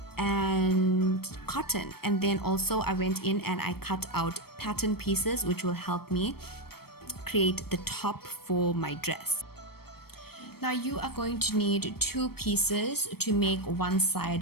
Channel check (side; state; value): right; late; 0.95 ms